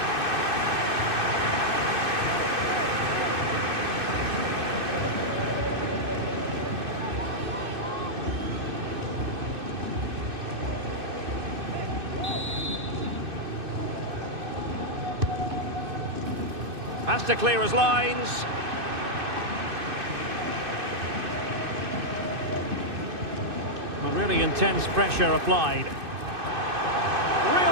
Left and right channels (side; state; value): left; late; 2.6 ms